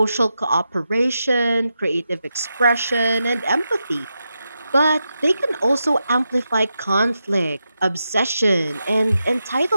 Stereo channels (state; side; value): inverted; both; correlation -0.88